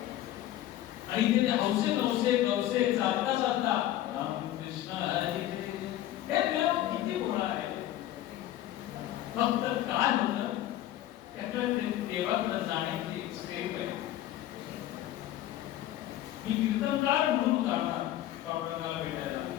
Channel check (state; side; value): quieter; right; 13.5 dB